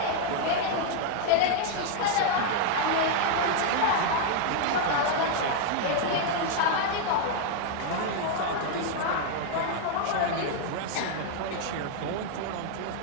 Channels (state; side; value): different; both; correlation 0.00